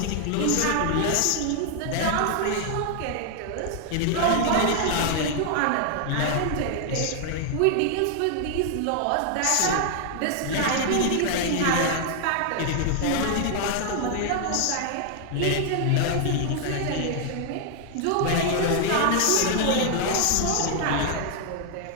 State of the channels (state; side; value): different; both; correlation 0.00